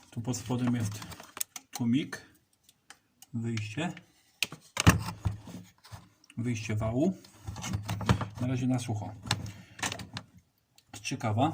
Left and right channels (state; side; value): identical; both; correlation 1.00